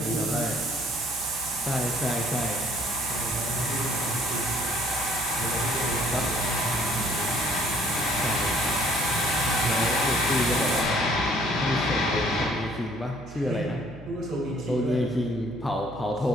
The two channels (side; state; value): right; noise; hum, 17 dB below the sound